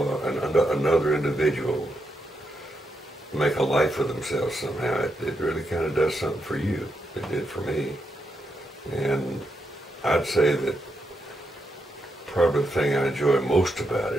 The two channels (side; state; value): both; normal; correlation 0.82